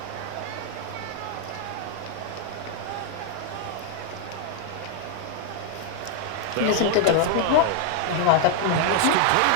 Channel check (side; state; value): both; different; correlation 0.00